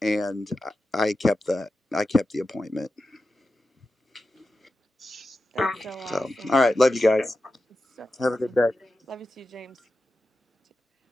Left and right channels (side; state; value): both; normal; correlation 0.91